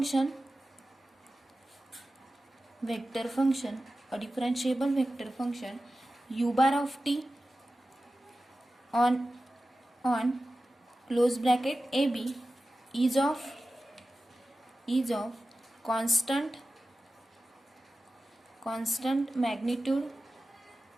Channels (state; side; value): normal; both; correlation 0.94